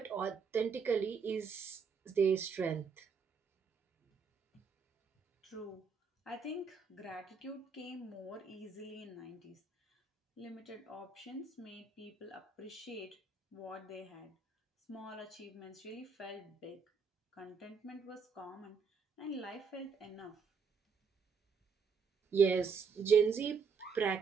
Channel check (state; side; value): quieter; left; 5.5 dB